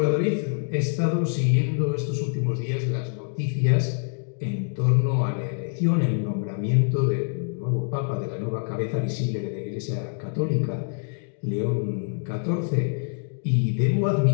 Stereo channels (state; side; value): silent; right; 58 dB below the other